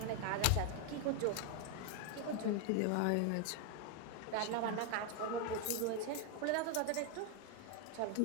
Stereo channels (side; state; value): both; different; correlation 0.01